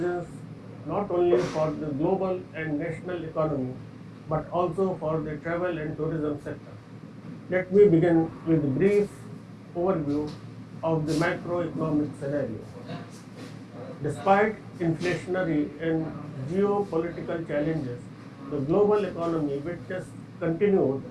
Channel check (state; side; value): identical; both; correlation 1.00